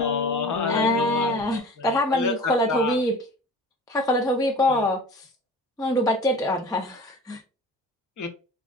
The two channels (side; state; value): both; normal; correlation 0.39